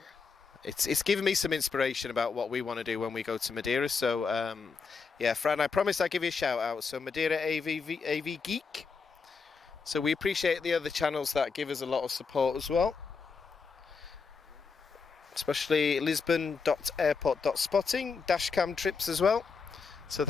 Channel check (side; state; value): right; quieter; 5.2 dB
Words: it's given me some inspiration about what we want to do when we go to Madeira. So yeah, Fran, I promised I'd give you a shout out. So Madeira AV Geek. So we appreciate the other channels that give us a lot of support as well, especially Lisbon.airport.spotting, dashcam trips as well. So